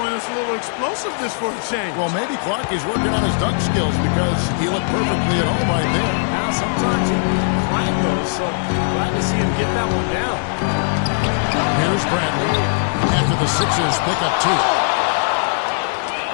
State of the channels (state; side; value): silent; right; digital silence